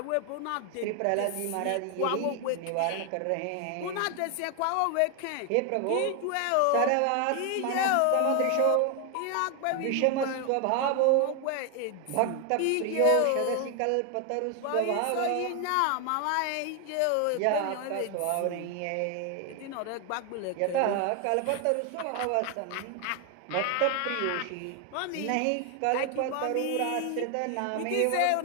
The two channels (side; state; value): both; different; correlation 0.01